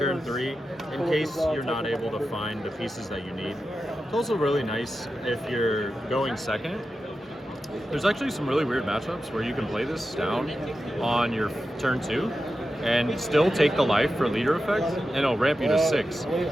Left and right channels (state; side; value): normal; both; correlation 0.91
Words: 3 in case you're not able to find the pieces that you need. It's also really nice if you're going second. There's actually some really weird matchups where you can play this down on your turn 2 and still take the life for leader effect, and it'll ramp you to 6.